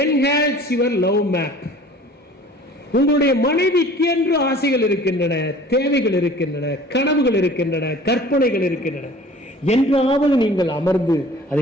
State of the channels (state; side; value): normal; both; correlation 0.47